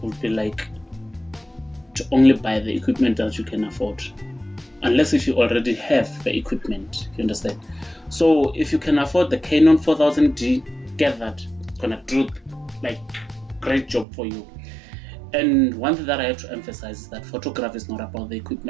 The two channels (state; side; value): drops out; left; at 14.1 s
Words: would be to only buy the equipment that you can afford, unless if you already have the equipment, you understand. So if you can afford the Canon 4000D, get that. It's gonna do great job for you. And one thing that I have to emphasize is that photography is not about the